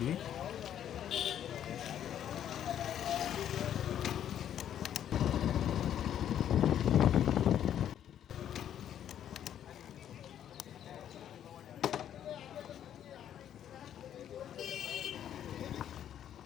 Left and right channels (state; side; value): quieter; right; 10.2 dB